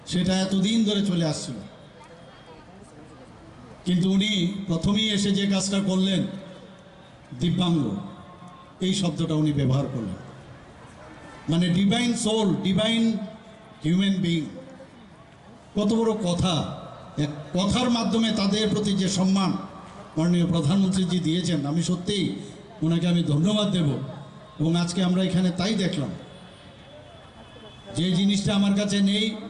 সেটা এতদিন ধরে চলে আসছিল। কিন্তু উনি প্রথমেই এসে যে কাজটা করলেন, দিব্যাঙ্গ এই শব্দটা উনি ব্যবহার করলেন, মানে divine soul, divine human being. কত বড় কথা! এক কথার মাধ্যমে তাদের প্রতি যে সম্মান মাননীয় প্রধানমন্ত্রীজি দিয়েছেন, আমি সত্যিই ওনাকে আমি ধন্যবাদ দেব। এবং আজকে আমরা এখানে তাই দেখলাম, যে জিনিসটা আমার কাছে নেই,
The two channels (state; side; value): identical; both; correlation 1.00